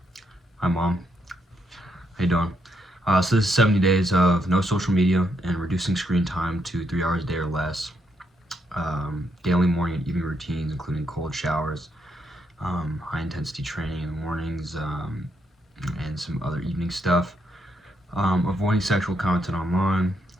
Hi Mom, how you doing? So this is 70 days of no social media and reducing screen time to 3 hours a day or less. Daily morning and evening routines including cold showers, high intensity training in the mornings, and some other evening stuff. Avoiding sexual content online,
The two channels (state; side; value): normal; both; correlation 0.78